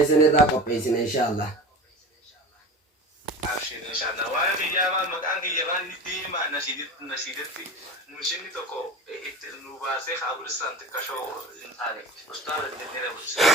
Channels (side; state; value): both; normal; correlation 0.33